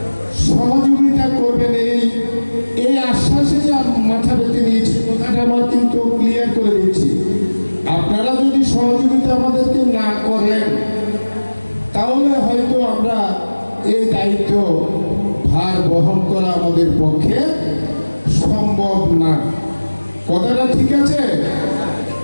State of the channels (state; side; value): inverted; both; correlation -1.00